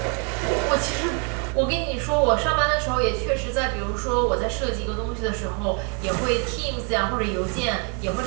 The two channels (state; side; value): quieter; left; 38.2 dB